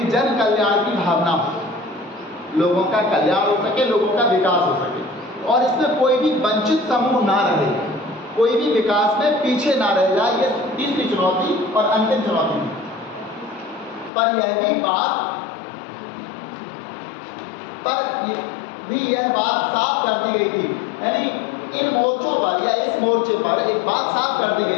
जन कल्याण की भावना हो, लोगों का कल्याण हो सके, लोगों का विकास हो सके, और इसमें कोई भी वंचित समूह ना रहे, कोई भी विकास में पीछे ना रह जाए। ये तीसरी चुनौती और अंतिम चुनौती। पर यह बात साफ कर दी गई थी, यानी इन मोर्चों पर या इस मोर्चे पर एक बात साफ कर दी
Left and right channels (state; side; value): drops out; right; at 14.1 s